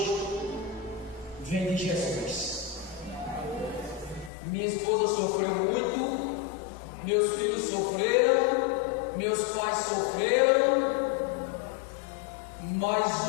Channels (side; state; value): right; drops out; at 4.3 s